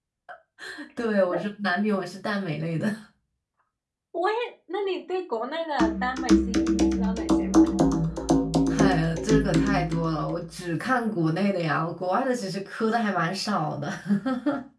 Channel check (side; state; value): both; identical; correlation 1.00